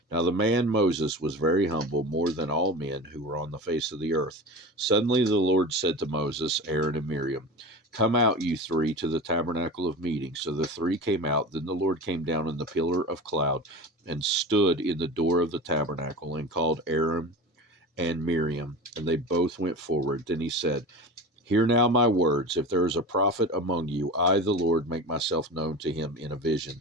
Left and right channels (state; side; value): normal; both; correlation 0.31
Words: Now the man Moses was very humble, more than all men who were on the face of the earth. Suddenly the Lord said to Moses, Aaron, and Miriam, Come out, you three, to the tabernacle of meeting. So the three came out. Then the Lord came down in the pillar of cloud and stood in the door of the tabernacle and called Aaron and Miriam, and they both went forward. Then he said, Hear now my words. If there is a prophet among you, I, the Lord, make myself known to him in a vision.